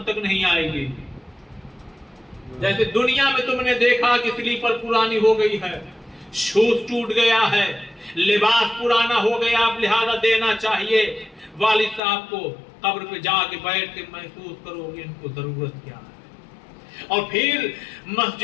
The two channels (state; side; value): drops out; right; at 12.0 s